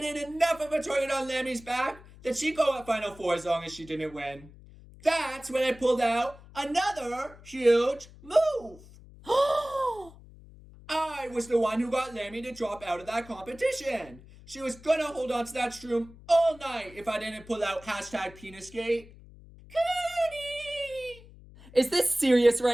enough of a target on Lammy's back that she'd go at Final Four as long as she didn't win. That's when I pulled out another huge move. I was the one who got Lammy to drop out of that competition. She was gonna hold on to that shroom all night if I didn't pull out hashtag Penisgate. Cooney! Is this serious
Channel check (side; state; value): left; noise; hum, 21 dB below the sound